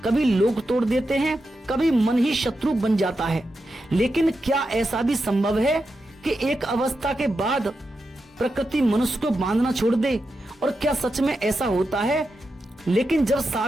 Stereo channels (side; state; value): both; normal; correlation 0.88